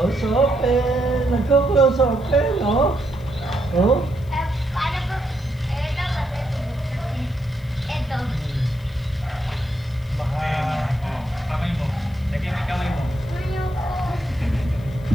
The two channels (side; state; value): left; noise; hiss, 28 dB below the sound